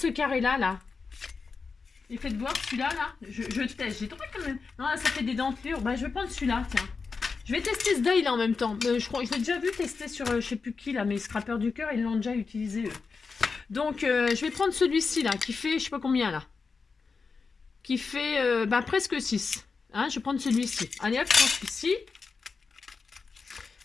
carré là, là. Et faites voir celui-là, là. Je teste. J'ai trouvé quand même. Non, là, ça fait des dentelures. Bah, je vais prendre celui-là, tiens. Je vais tester ce die là en même temps. Je crois, je l'ai déjà vu tester sur je sais plus qui là, mais Scrapper du cœur, ils l'ont déjà utilisé eux. Donc je vais prendre celui-ci là, qui fait je sais pas combien là. Qui fait bah, presque 6. Hein, je vais prendre celui-ci. Allez hop, je prends celui-ci.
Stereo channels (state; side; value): quieter; right; 4.8 dB